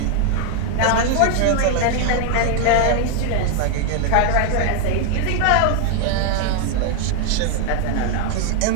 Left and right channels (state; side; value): different; both; correlation 0.00